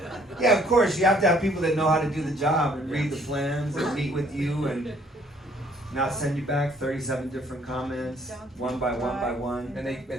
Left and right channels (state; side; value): normal; both; correlation 0.62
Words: Yeah, of course, you have to have people that know how to do the job and read the plans and meet with you and not send you back 37 different comments, one by one by one. And they